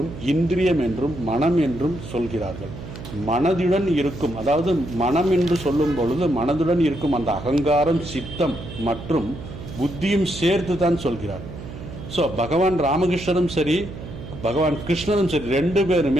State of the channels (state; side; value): noise; right; hum, 12 dB below the sound